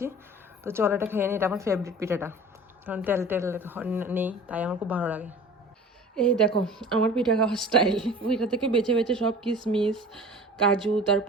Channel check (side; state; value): both; normal; correlation 0.41